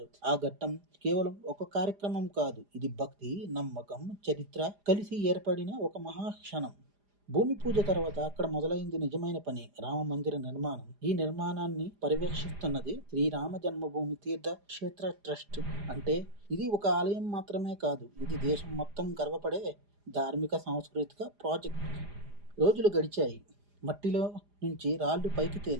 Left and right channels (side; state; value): left; late; 4.9 ms